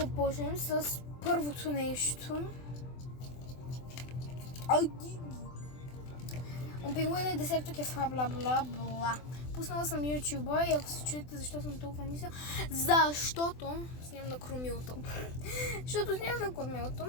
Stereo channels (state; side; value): late; right; 24 ms